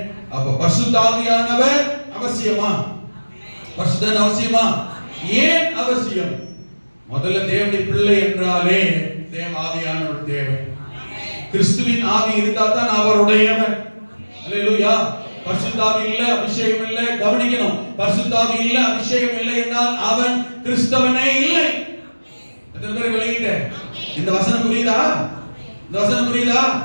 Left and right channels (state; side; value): inverted; both; correlation -1.00